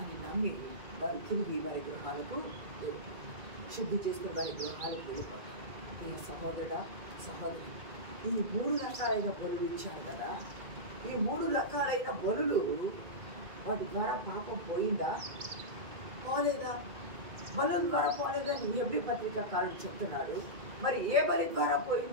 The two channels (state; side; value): late; left; 2.3 ms